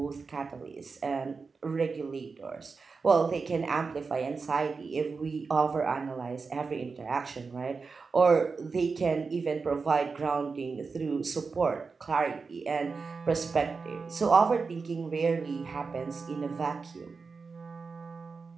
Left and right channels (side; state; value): left; quieter; 4.7 dB